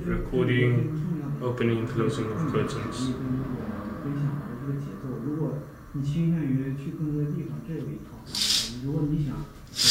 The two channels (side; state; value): both; identical; correlation 1.00